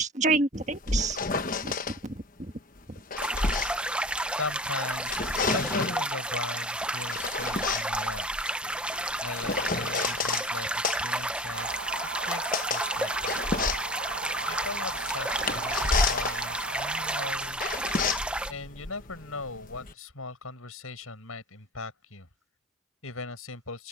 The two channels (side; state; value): both; normal; correlation 0.37